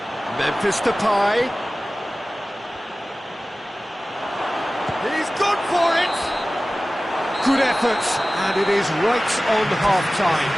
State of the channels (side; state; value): both; normal; correlation 0.97